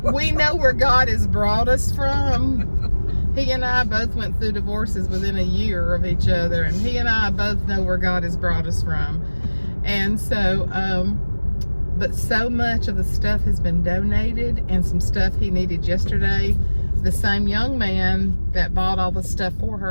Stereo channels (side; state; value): both; inverted; correlation -1.00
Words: We know where God has brought us from. He and I both went through divorces within a year of each other, and he and I both know where God has brought us from. And so, but so much of the stuff has been donated, and some stuff he needed yesterday. The same young man that bought all the stuff for